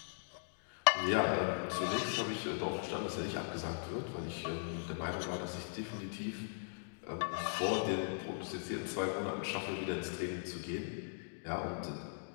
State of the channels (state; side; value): silent; right; digital silence